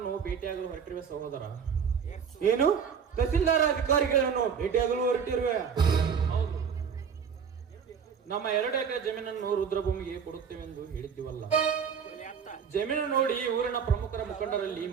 ಭೇಟಿಯಾಗಲು ಹೊರಟಿರುವ ಸಹೋದರ. ಏನು ತಹಸೀಲ್ದಾರ ಅಧಿಕಾರಿಗಳನ್ನು ಭೇಟಿಯಾಗಲು ಹೊರಟಿರುವೆ? ಹೌದು, ನಮ್ಮ 2 ಎಕರೆ ಜಮೀನನ್ನು ರುದ್ರಭೂಮಿಗೆ ಕೊಡುತ್ತೇವೆಂದು ಹೇಳಿದ್ದೀವಲ್ಲ. ಜಮೀನು ನೋಡಿ ಊರಿನ ಪ್ರಮುಖರ ಮುಖಂಡರಲ್ಲಿ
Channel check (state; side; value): quieter; left; 6.9 dB